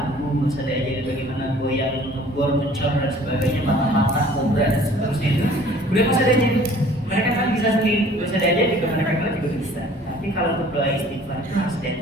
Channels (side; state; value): both; normal; correlation 0.52